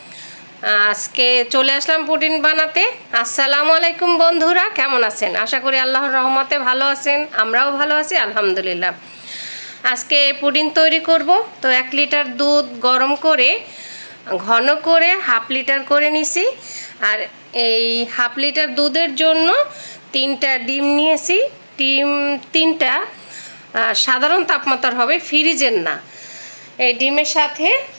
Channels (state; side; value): inverted; both; correlation -1.00